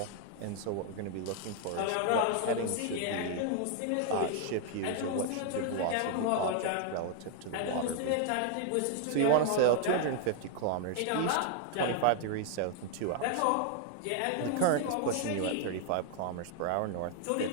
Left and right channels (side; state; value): both; different; correlation 0.00